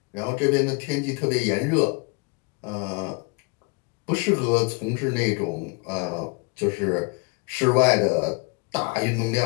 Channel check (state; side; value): quieter; right; 31.3 dB